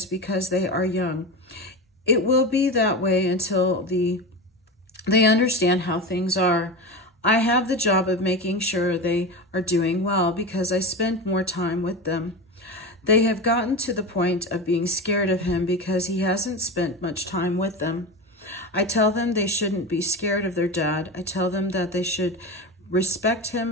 because they are young. It will be that way until they understand how things are. I have the job of making sure they are doing well because I spend more time with them. They have gotten to the point of being scared of him because he hasn't spent much time with them. I tell them they shouldn't be scared of their dad. I tell them that they should respect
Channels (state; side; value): normal; both; correlation 0.24